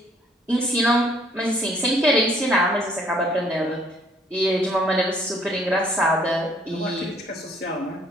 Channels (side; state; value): both; normal; correlation 0.62